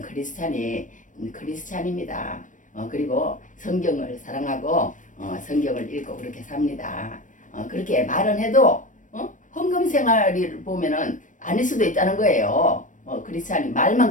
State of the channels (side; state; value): right; late; 0.37 ms